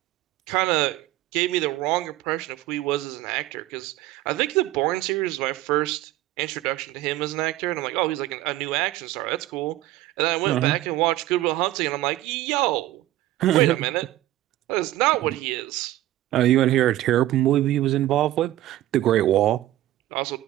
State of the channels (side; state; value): left; quieter; 15.2 dB